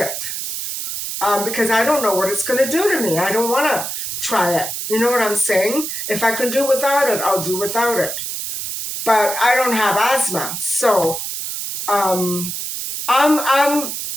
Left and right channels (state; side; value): noise; right; hiss, 5 dB below the sound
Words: Because I don't know what it's going to do to me. I don't want to try it. You know what I'm saying? If I can do without it, I'll do without it. But I don't have asthma, so I'm